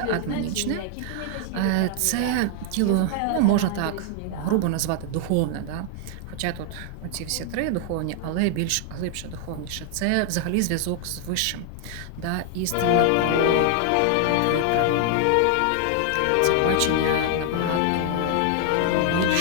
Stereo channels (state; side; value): different; both; correlation 0.00